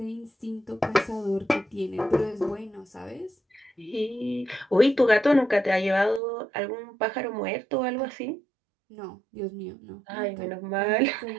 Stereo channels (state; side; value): drops out; left; at 6.2 s